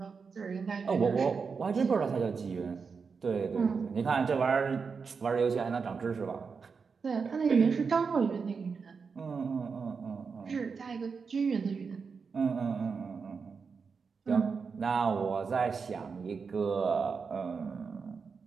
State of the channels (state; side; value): quieter; left; 5.4 dB